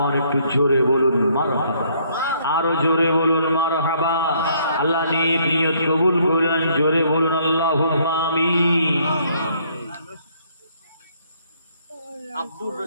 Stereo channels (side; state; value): both; inverted; correlation -0.66